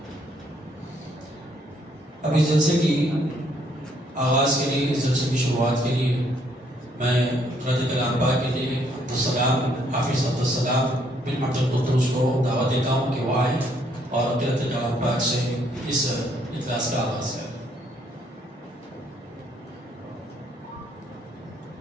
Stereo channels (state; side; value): normal; both; correlation 0.69